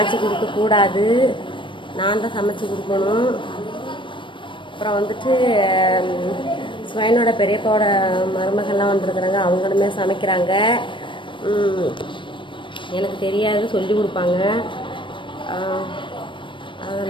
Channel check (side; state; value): right; late; 0.24 ms